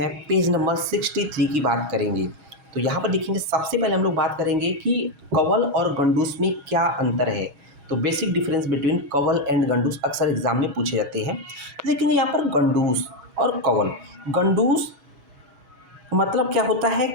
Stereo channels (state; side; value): late; left; 6.2 ms